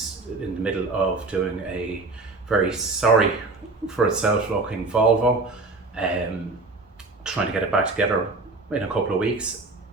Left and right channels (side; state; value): left; quieter; 3.5 dB